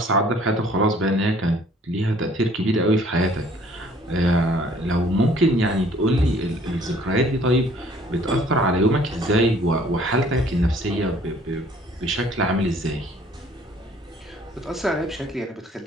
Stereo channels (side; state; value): both; normal; correlation 0.57